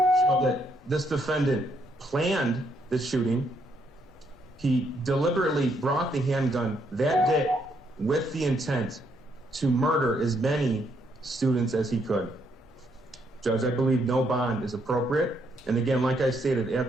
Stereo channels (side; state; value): both; normal; correlation 0.73